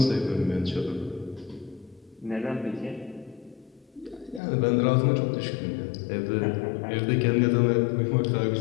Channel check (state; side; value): drops out; right; at 4.4 s